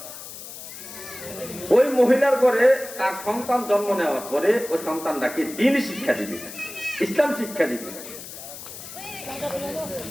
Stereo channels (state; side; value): noise; left; hiss, 12 dB below the sound